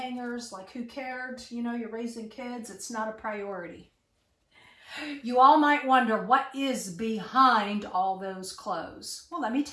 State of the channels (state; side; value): identical; both; correlation 1.00